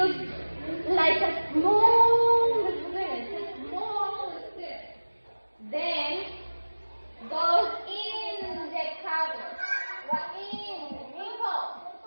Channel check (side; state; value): both; inverted; correlation -1.00